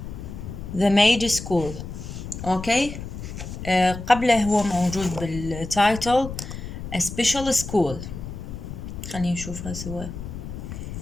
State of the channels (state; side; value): noise; left; rumble, 9 dB below the sound